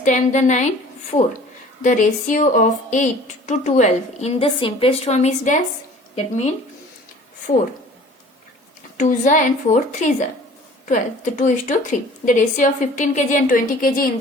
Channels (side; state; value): both; normal; correlation 0.48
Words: the 9, 4. The ratio of 8 to 12 in the simplest form is dash. That means 4 2s and 4 3s. 12. The 2 is to 3. The ratio of 15 kg and 20 kg in